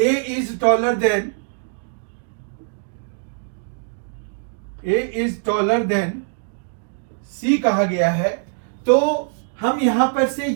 is taller then C कहा गया है, तो हम यहां पर से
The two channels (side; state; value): left; silent; digital silence